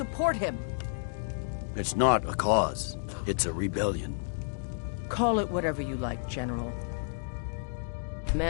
him. It's not a cause. It's a rebellion. Call it whatever you like, General.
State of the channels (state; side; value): silent; right; digital silence